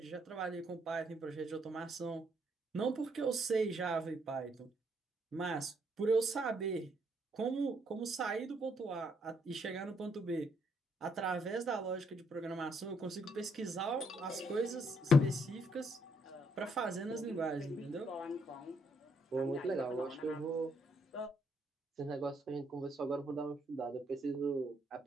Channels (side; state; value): both; normal; correlation 0.72